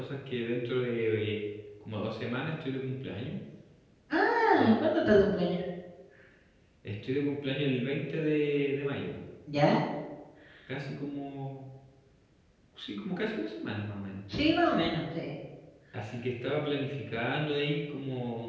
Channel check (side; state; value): both; identical; correlation 1.00